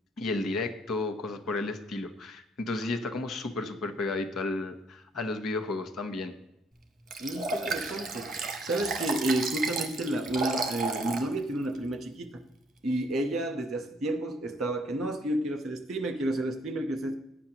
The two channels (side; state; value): both; normal; correlation 0.65